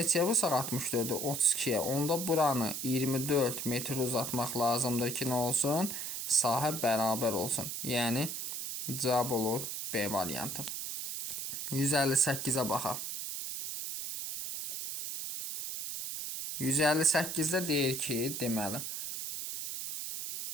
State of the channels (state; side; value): noise; right; hiss, 5 dB below the sound